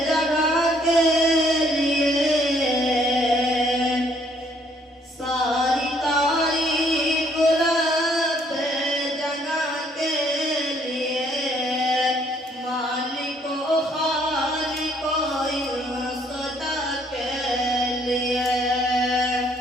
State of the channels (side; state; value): both; normal; correlation 0.65